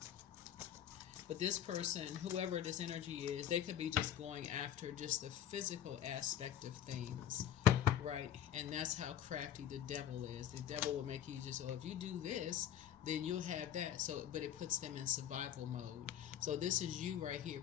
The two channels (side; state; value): right; quieter; 10.4 dB